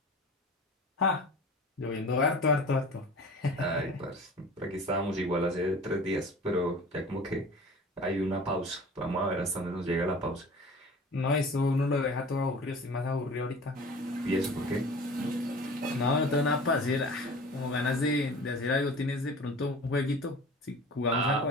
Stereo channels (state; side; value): normal; both; correlation 0.41